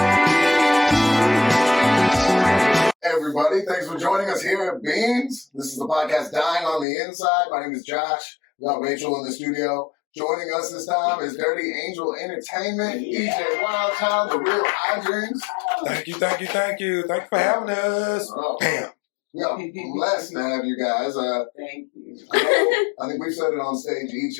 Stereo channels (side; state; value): right; drops out; at 6.9 s